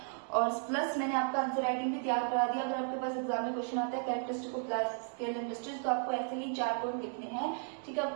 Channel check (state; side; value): silent; left; 55 dB below the other